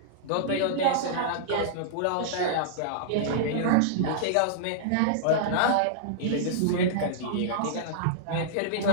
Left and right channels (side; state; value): both; different; correlation -0.02